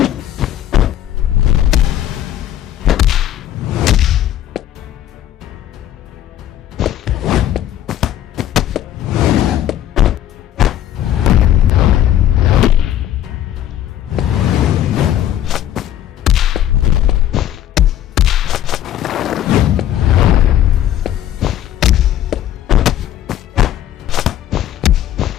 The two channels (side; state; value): right; quieter; 11.8 dB